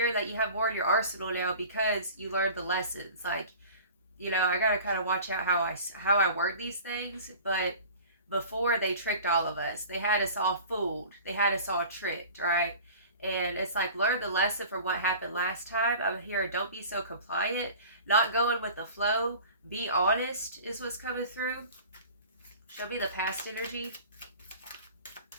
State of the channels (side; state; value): both; inverted; correlation -0.41